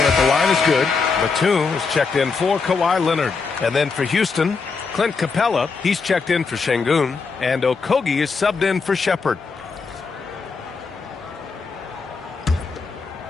at the line is good. Batum is checked in for Kawhi Leonard. And then for Houston, Clint Capella, he's checked in for Şengün. And Okogie is subbed in for Shepard.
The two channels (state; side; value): quieter; right; 4.8 dB